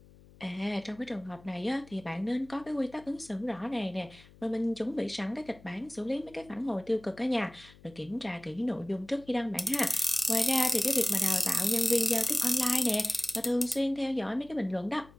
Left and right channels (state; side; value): noise; left; hum, 24 dB below the sound